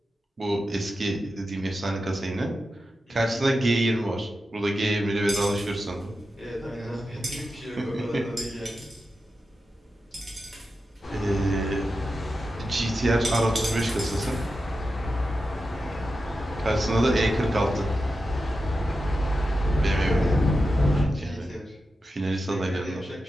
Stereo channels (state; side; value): normal; both; correlation 0.91